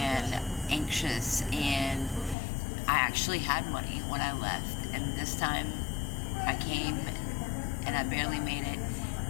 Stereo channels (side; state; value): right; drops out; at 2.4 s